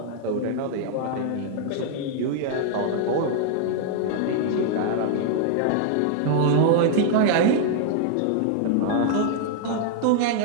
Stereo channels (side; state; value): both; different; correlation 0.00